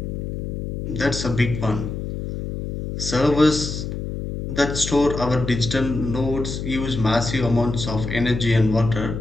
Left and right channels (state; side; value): noise; left; hum, 5 dB below the sound